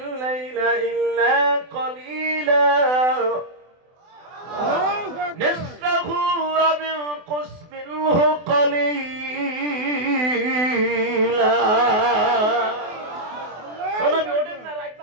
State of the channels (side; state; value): left; late; 24 ms